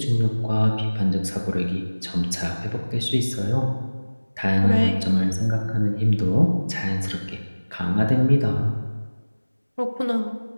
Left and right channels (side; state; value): both; inverted; correlation -1.00